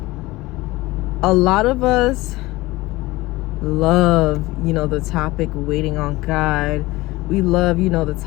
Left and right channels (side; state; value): right; quieter; 20.0 dB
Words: a lot of us love, the topic waiting on God. We love, the